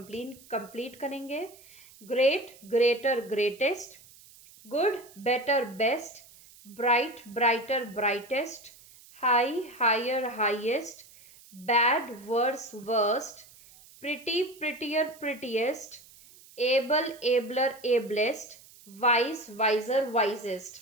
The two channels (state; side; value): noise; right; hiss, 23 dB below the sound